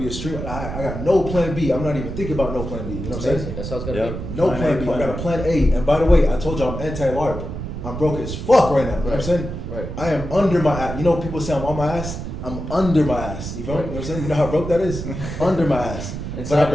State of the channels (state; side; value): noise; right; rumble, 6 dB below the sound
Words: a streamer. I got no plan B. I'm not even thinking about no plan B. You know what I'm saying? Amazing. That's how it's gotta Yeah. be. No Plan plan A, B. plan I got A. a plan A. And by the way, I told you I'm anti-LARP. I'm broke as fuck right now. You know what I'm saying? Right. I am under my ass. You know, people say I'm on my ass. I'm under my ass. You feel me? You know what I'm saying? You know how broke that is? Under my ass. But I